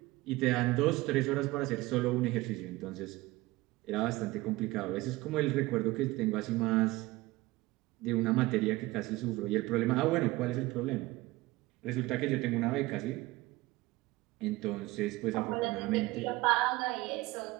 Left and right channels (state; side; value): quieter; left; 19.8 dB